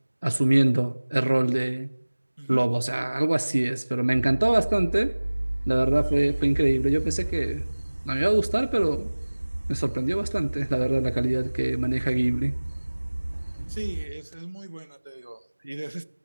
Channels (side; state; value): both; inverted; correlation -1.00